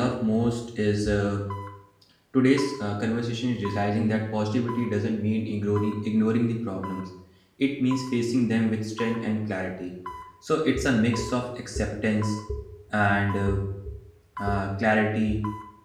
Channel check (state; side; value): identical; both; correlation 1.00